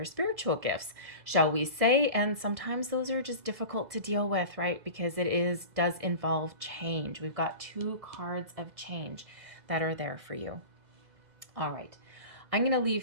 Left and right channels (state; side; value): late; left; 2.0 ms